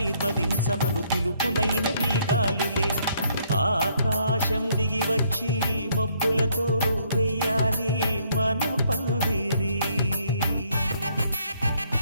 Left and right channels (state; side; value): inverted; both; correlation -0.67